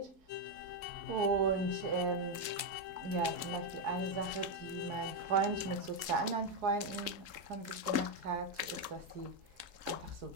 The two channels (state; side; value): late; left; 3.7 ms